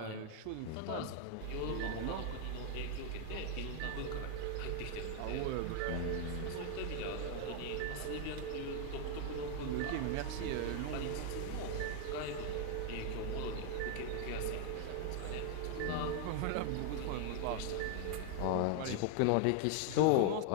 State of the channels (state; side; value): different; both; correlation 0.00